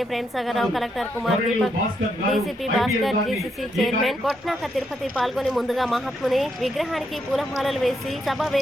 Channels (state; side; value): normal; both; correlation 0.79